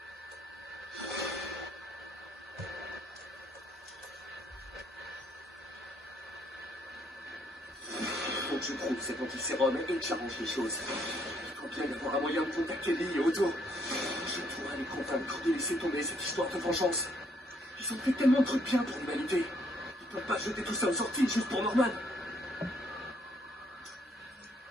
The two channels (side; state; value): both; normal; correlation 0.70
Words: Faut que je trouve cet antisérum et que j'arrange les choses. Il faut bien y avoir un moyen de contacter Lee et Otto. Je pourrais les convaincre de laisser tomber cette histoire de vengeance. Ils ont fait tellement de trucs bien pour l'humanité. Ils peuvent pas jeter tout ça aux sorties juste pour Norman.